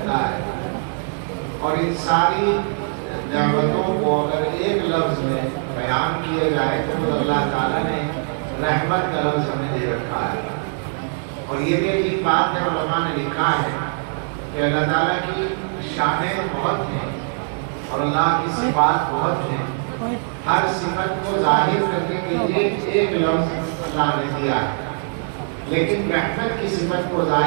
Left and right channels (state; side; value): silent; left; 58 dB below the other